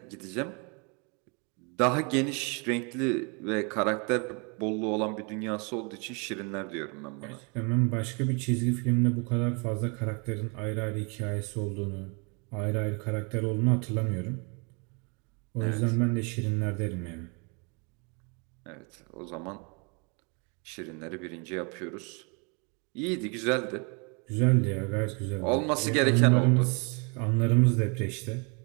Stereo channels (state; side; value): quieter; left; 33.3 dB